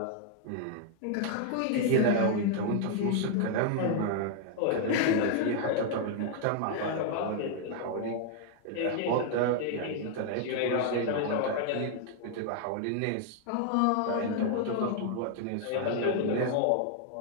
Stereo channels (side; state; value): both; different; correlation 0.00